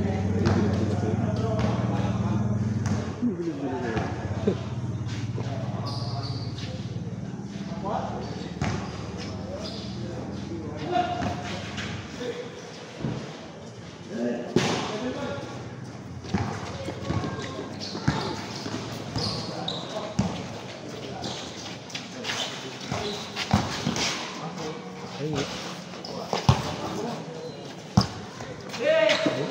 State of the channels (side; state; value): both; identical; correlation 1.00